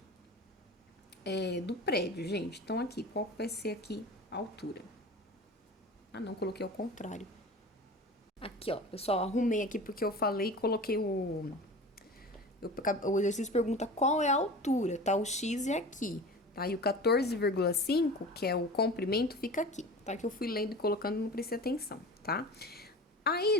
do prédio, gente? Então, aqui, qual vai ser aqui a altura? Ah, não, coloquei ao contrário. Aqui, ó, pessoal, arrumei aqui porque eu falei e coloquei o exercício pergunta qual é a altura, tá? O X é aqui, tá? E o 14,5, que é o comprimento, fica aqui, tá? Que eu fui lendo e colocando, não prestei atenção, tá?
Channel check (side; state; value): both; normal; correlation 0.35